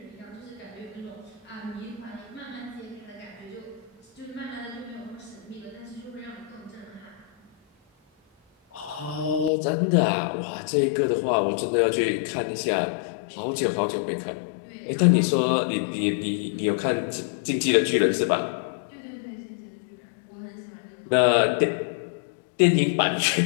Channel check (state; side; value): drops out; right; at 9.5 s